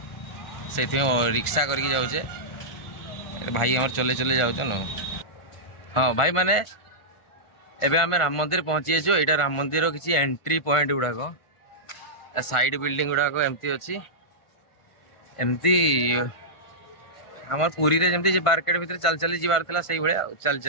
से रिक्शा करके जाऊे भाई आम चले चले जाऊँ न। हाँ भाई माने एबे आम राम मंदिर पहुँची जाइए। यहाँ राम मंदिर किसी एंट्री पॉइंट गुड़ाक साइड बिल्डिंग गुड़ाक एमती अच्छी एमती आम पुरी रे जमती मार्केट भीतर चल चली जीवार था से भाया चल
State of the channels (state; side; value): late; right; 1.5 ms